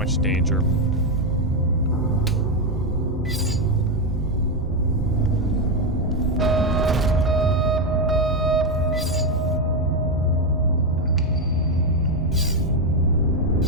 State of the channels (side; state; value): both; normal; correlation 0.05